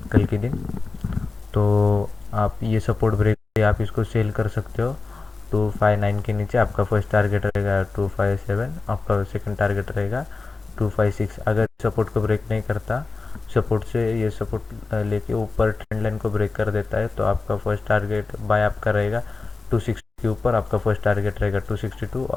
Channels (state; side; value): quieter; right; 3.9 dB